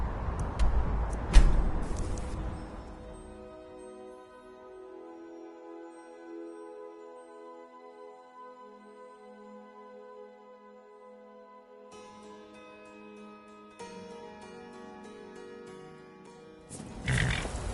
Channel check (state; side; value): identical; both; correlation 1.00